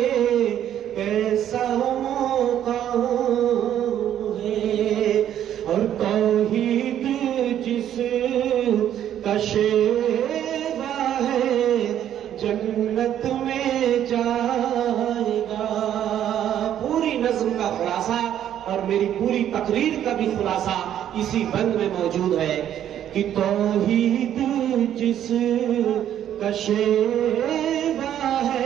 کیسا مقام ہے، اور توحید جس کا شیوا ہے جنت میں جائے گا۔ پوری نظم کا خلاصہ اور میری پوری تقریر کا بھی خلاصہ اسی بند میں موجود ہے کہ توحید جس کا شیوا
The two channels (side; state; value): left; quieter; 10.7 dB